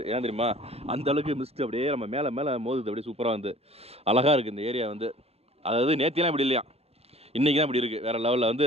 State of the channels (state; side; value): late; left; 0.29 ms